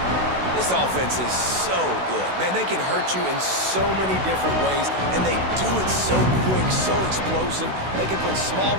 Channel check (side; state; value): left; late; 16 ms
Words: This offense is so good. Man, they can hurt you in so many different ways, and they do it so quick, so explosive. They can put small